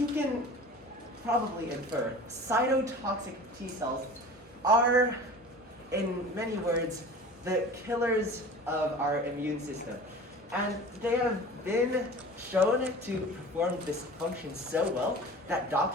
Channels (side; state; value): both; normal; correlation 0.39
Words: can probably infer, cytotoxic T cells are, in many words, the killers of our immune system. And they have been shown to perform this function so well that